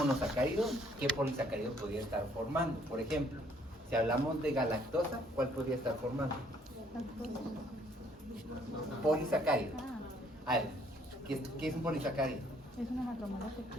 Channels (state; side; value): normal; both; correlation 0.63